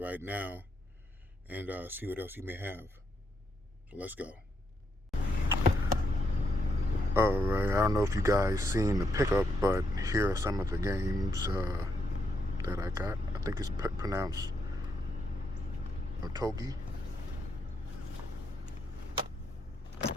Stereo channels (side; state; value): both; normal; correlation 0.79